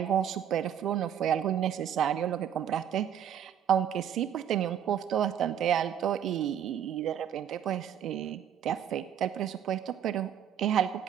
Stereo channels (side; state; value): left; quieter; 9.3 dB